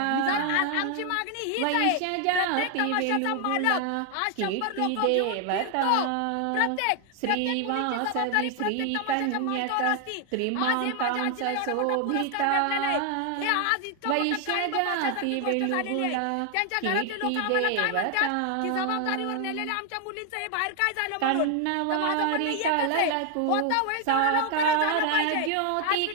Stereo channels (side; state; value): both; different; correlation 0.00